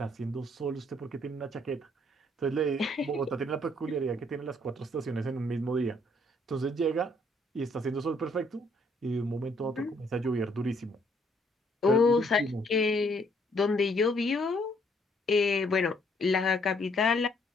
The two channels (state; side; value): normal; both; correlation 0.66